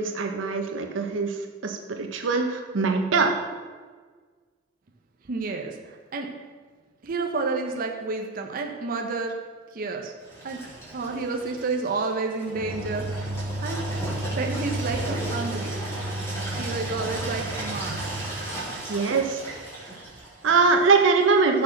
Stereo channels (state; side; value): quieter; left; 3.5 dB